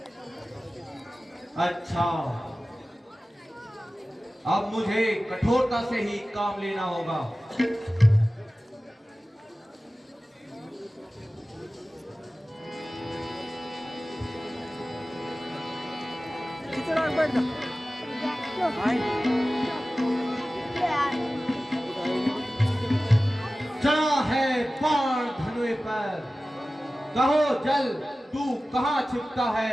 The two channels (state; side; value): normal; both; correlation 0.96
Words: अच्छा, अब मुझे कठोरता से ही काम लेना होगा। चढ़ा है बाण धनुए पर, कहो जल तू कहाँ छिपता